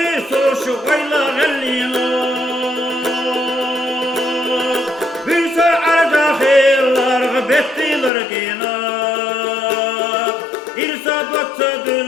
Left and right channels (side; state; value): right; drops out; at 8.1 s